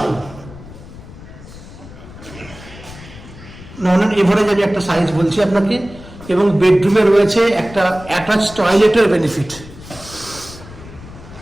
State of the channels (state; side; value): noise; left; rumble, 17 dB below the sound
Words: নন এভারেজ আমি একটা সাইজ বলছি আপনাকে। এবং বেডরুমে রয়েছে একটা অ্যাটাচ টয়লেটের বেনিফিট।